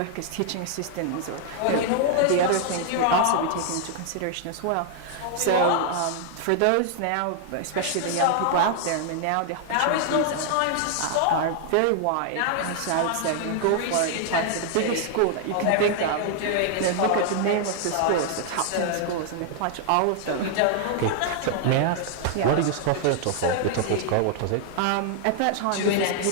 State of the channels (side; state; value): both; different; correlation 0.00